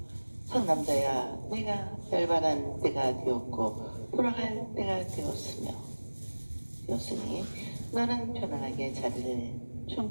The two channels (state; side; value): inverted; both; correlation -1.00